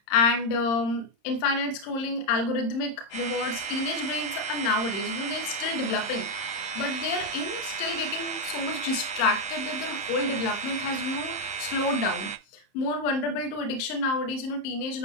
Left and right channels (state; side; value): late; right; 30 ms